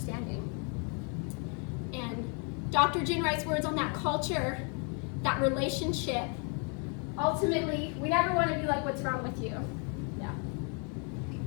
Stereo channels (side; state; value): right; quieter; 38.1 dB